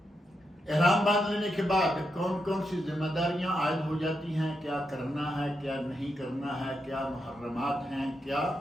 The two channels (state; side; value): normal; both; correlation 0.84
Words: احرام باندھ لینے کے بعد کون کون سی ذمہ داریاں عائد ہو جاتی ہیں، کیا کرنا ہے کیا نہیں کرنا ہے، کیا محرمات ہیں کیا